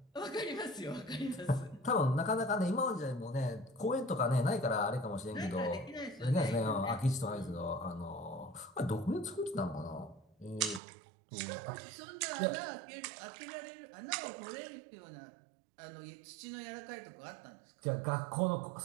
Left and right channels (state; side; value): drops out; left; at 10.8 s